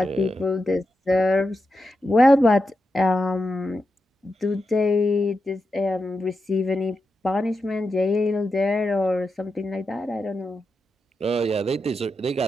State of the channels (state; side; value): normal; both; correlation 0.88